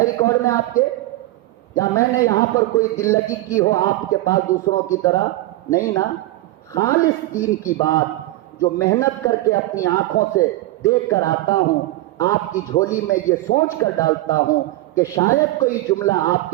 ریکارڈ میں آپ کے؟ یا میں نے یہاں پر کوئی دل لگی کی ہو آپ کے پاس دوسروں کی طرح؟ نہیں نا. خالص دین کی بات جو محنت کر کے اپنی آنکھوں سے دیکھ کر آتا ہوں، آپ کی جھولی میں یہ سوچ کر ڈالتا ہوں کہ شاید کوئی جملہ آپ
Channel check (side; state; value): left; quieter; 17.1 dB